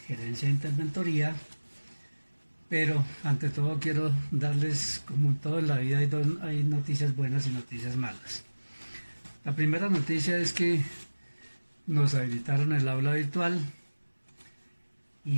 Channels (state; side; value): inverted; both; correlation -1.00